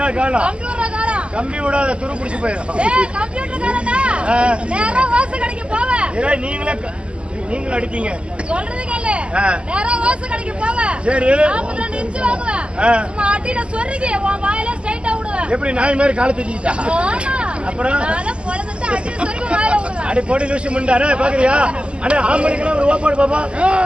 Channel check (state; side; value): late; left; 0.053 ms